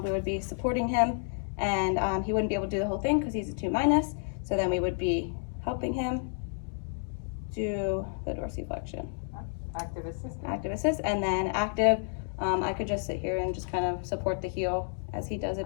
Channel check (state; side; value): silent; right; 57 dB below the other